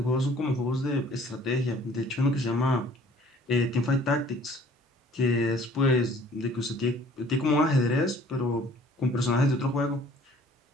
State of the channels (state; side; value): normal; both; correlation 0.54